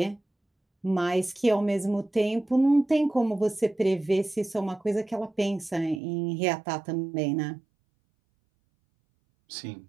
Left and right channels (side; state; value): left; drops out; at 6.0 s